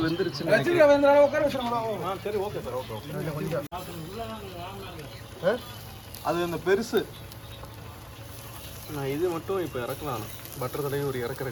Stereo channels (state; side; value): identical; both; correlation 1.00